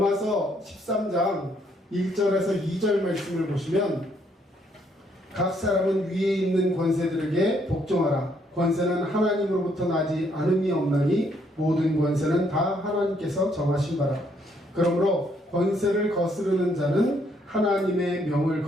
13장 1절에서 2절 말씀을 보시면 각 사람은 위에 있는 권세들에게 복종하라. 권세는 하나님으로부터 나지 않음이 없나니 모든 권세는 다 하나님께서 정하신 바라. 그러므로 권세를 거스르는 자는 하나님의 명을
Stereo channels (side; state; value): both; normal; correlation 0.70